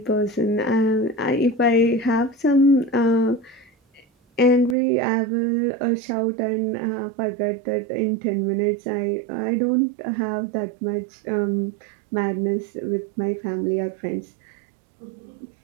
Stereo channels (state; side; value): drops out; left; at 4.8 s